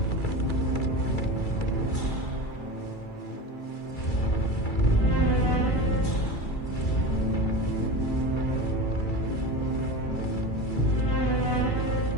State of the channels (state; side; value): late; right; 2.3 ms